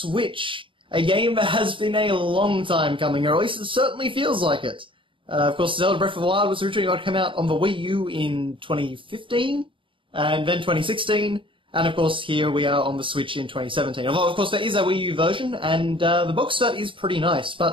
A game that has been a long time coming, or at least it certainly feels like it. Of course, Zelda Breath of the Wild was originally going to come out on the Wii U in 2015, and then 2016, and of course here we are on the Switch in 2017. Although, of course, there is a Wii U version, and the box art is pretty nice,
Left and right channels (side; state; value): left; late; 0.25 ms